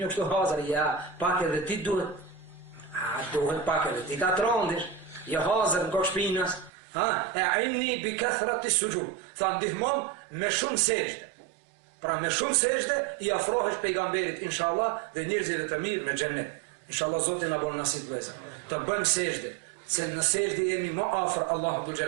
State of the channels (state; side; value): drops out; left; at 6.7 s